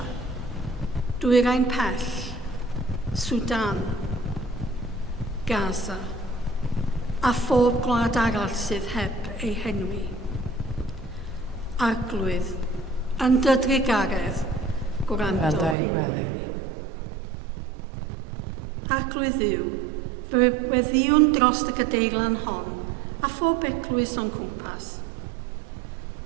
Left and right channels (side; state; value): left; drops out; at 15.8 s